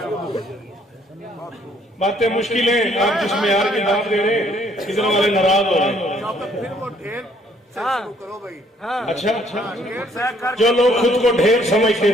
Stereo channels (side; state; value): both; normal; correlation 0.64